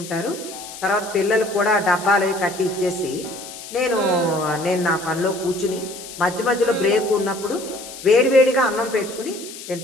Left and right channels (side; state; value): left; noise; hiss, 13 dB below the sound